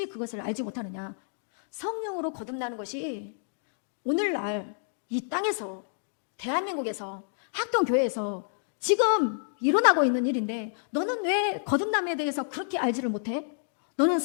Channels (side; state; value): right; silent; digital silence